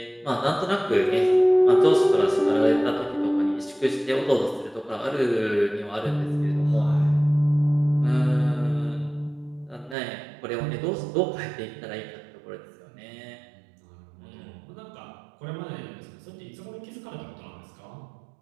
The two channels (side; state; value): left; drops out; at 10.0 s